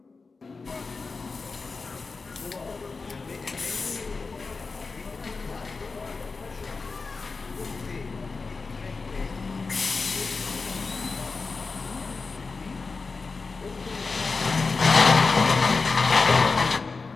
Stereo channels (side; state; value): right; quieter; 4.3 dB